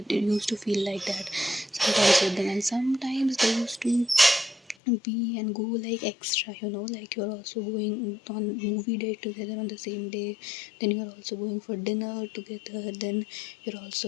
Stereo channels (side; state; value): right; drops out; at 4.8 s